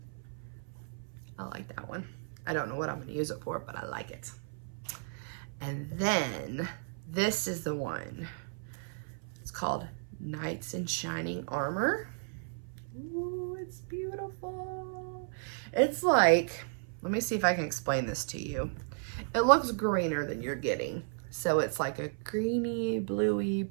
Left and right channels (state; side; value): silent; left; 55 dB below the other